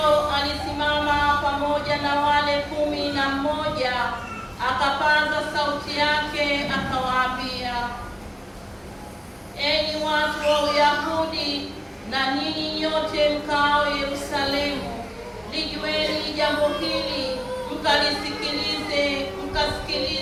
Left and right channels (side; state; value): both; identical; correlation 1.00